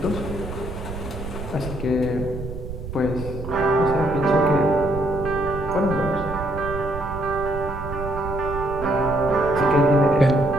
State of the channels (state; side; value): noise; right; rumble, 9 dB below the sound